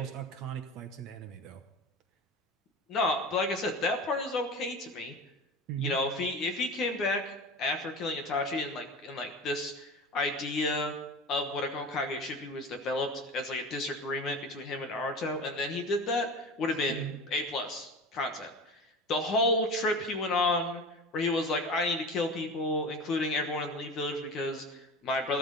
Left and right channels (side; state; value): both; normal; correlation 0.31